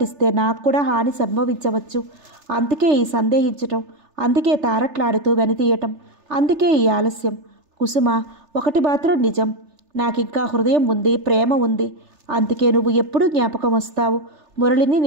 నాకు కూడా హాని సంభవించవచ్చు. అందుకే ఈ సందేహించటం, అందుకే తారట్లాడుతూ వెనుతీయటం, అందుకే ఈ ఆలస్యం. కుసుమ, ఒకటి మాత్రం నిజం, నాకింకా హృదయం ఉంది, ప్రేమ ఉంది. అందుకే నువ్వు ఎప్పుడూ జ్ఞాపకం వస్తావు. మురళిని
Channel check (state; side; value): late; left; 3.3 ms